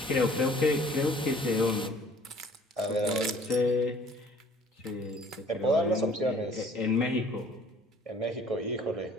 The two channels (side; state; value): both; normal; correlation 0.54